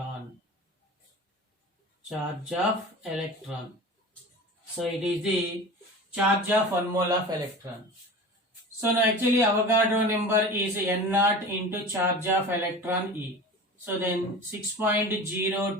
Charge of electron. So it is the charge of 1 mole of electron. So now actually Avogadro number is N0 into charge of electron E. So then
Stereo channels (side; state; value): both; normal; correlation 0.35